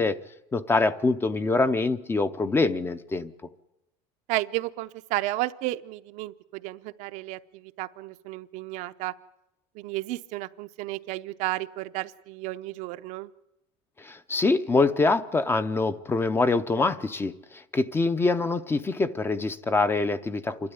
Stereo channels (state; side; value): normal; both; correlation 0.66